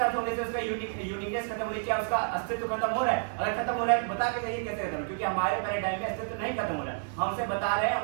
होने से उसका यूनिकनेस खत्म हो रही है? क्या उसका अस्तित्व खत्म हो रहा है? अगर खत्म हो रहा है बता के जाइए ये कैसे खत्म, क्योंकि हमारे पैराडाइम में अस्तित्व नहीं खत्म हो रहा है, हम उसे बता रहे हैं,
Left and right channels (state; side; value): silent; left; digital silence